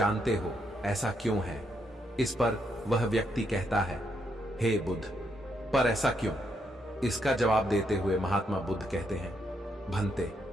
हो ऐसा क्यों है? इस पर वह व्यक्ति कहता है, हे बुद्ध, पर ऐसा क्यों? इसका जवाब देते हुए महात्मा बुद्ध कहते हैं, भंते,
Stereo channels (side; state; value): both; normal; correlation 0.77